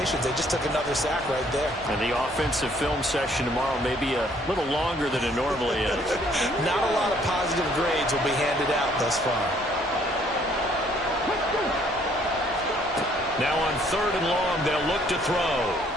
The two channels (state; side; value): normal; both; correlation 0.63